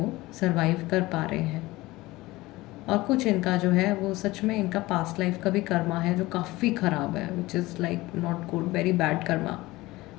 सरवाइव कर पा रहे हैं। और कुछ इनका जो है वो सच में इनका पास्ट लाइफ का भी कर्मा है जो काफ़ी ख़राब है, which is like not good, very bad Karma.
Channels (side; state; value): right; quieter; 19.6 dB